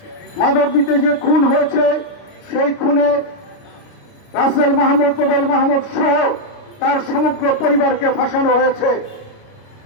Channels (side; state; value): right; late; 29 ms